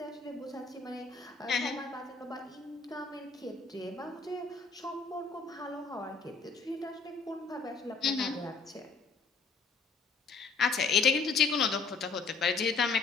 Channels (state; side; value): quieter; right; 4.6 dB